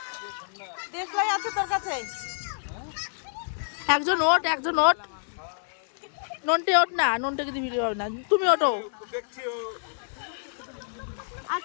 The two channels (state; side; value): silent; right; digital silence